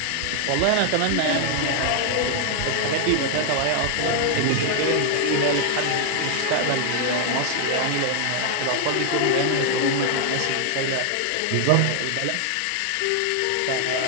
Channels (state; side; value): different; both; correlation 0.00